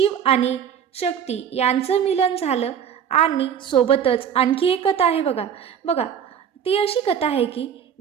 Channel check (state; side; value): quieter; left; 8.3 dB